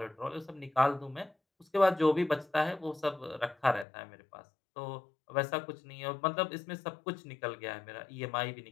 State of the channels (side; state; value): right; drops out; at 3.9 s